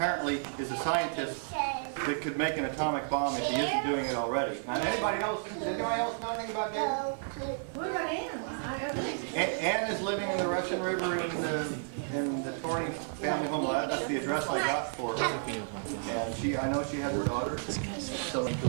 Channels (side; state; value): left; silent; digital silence